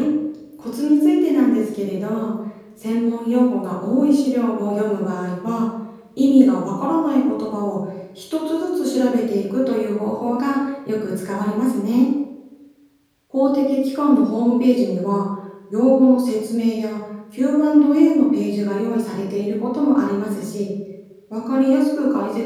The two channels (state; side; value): identical; both; correlation 1.00